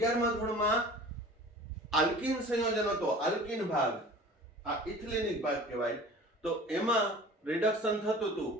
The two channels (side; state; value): both; normal; correlation 0.43